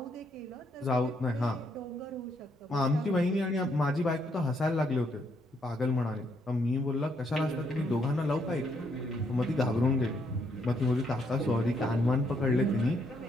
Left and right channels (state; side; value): normal; both; correlation 0.74